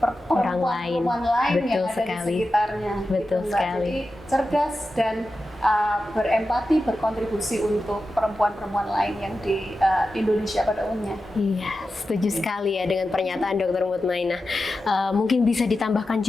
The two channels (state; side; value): normal; both; correlation 0.92